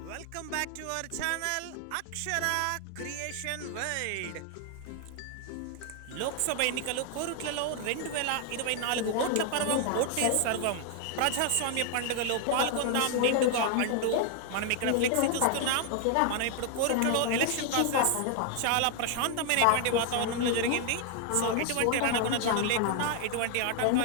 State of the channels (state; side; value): different; both; correlation 0.00